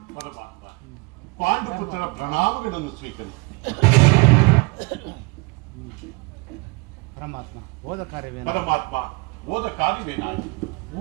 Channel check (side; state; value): left; quieter; 28.1 dB